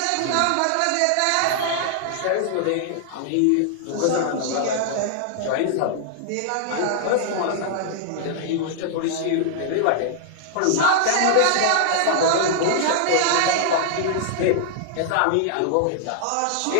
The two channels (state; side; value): different; both; correlation -0.01